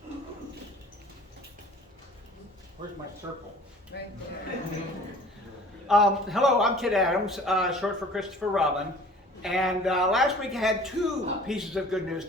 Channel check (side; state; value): both; normal; correlation 0.47